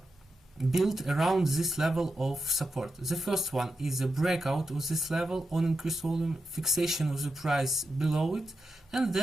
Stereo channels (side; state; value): both; normal; correlation 0.88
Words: built around this level of support. The first one is a breakout of this level on increased volume, fixation of the price below it, and